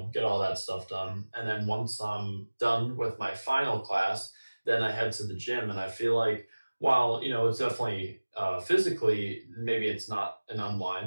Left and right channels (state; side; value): inverted; both; correlation -1.00